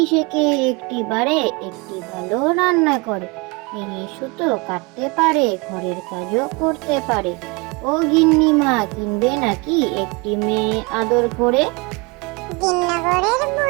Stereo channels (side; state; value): left; quieter; 28.2 dB